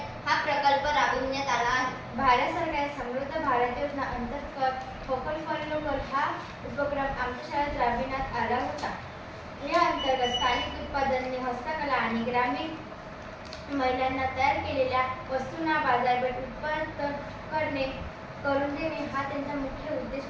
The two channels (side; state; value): both; identical; correlation 1.00